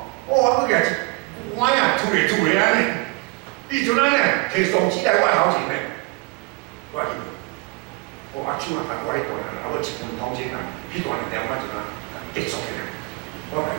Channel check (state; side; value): quieter; left; 27.5 dB